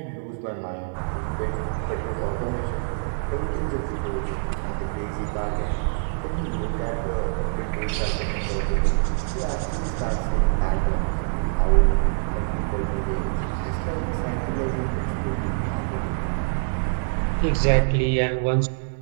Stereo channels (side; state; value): left; silent; digital silence